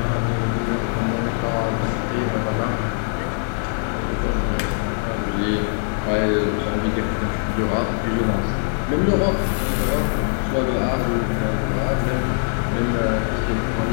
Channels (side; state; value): right; silent; 64 dB below the other